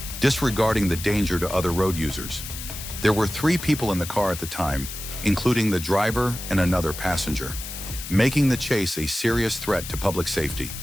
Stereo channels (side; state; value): left; noise; hiss, 9 dB below the sound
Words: disregarding the danger to other road users. There were 3 people in the car at the time, including the driver and another passenger, making the chase a serious threat to public safety.